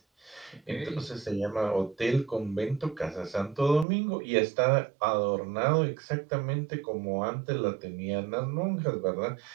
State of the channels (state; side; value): drops out; left; at 3.9 s